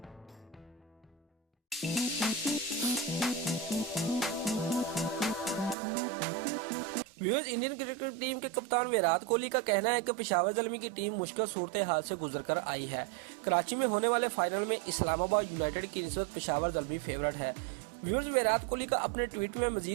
व्यूअर्स, इंडियन क्रिकेट टीम के कप्तान विराट कोहली का कहना है कि पेशावर ज़ल्मी की टीम मुश्किल सूरत हाल से गुजरकर आई है। कराची में होने वाले फाइनल में इस्लामाबाद यूनाइटेड की निस्बत पेशावर ज़ल्मी फेवरेट है। व्यूअर्स, विराट कोहली का अपने ट्वीट में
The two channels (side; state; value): left; drops out; at 5.8 s